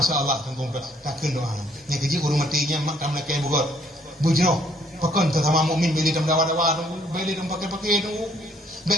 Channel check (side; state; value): both; normal; correlation 0.64